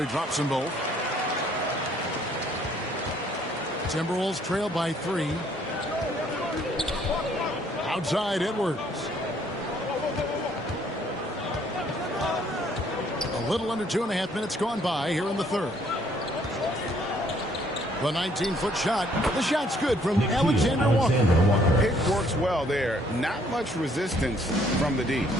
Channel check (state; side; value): normal; both; correlation 0.64